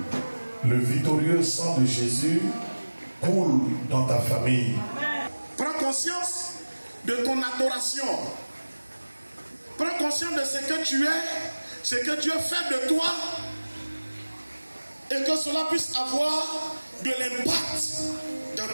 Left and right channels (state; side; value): inverted; both; correlation -1.00